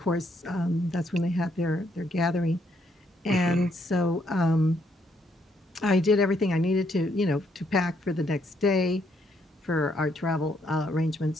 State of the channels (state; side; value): normal; both; correlation 0.73